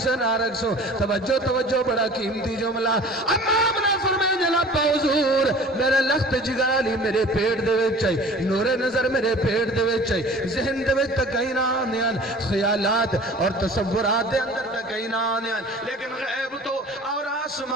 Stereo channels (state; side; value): normal; both; correlation 0.44